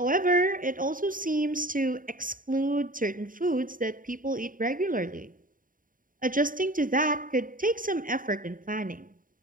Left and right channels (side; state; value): left; late; 0.40 ms